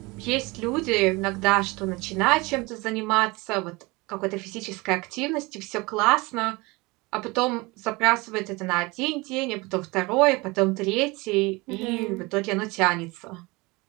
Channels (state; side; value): quieter; left; 24.3 dB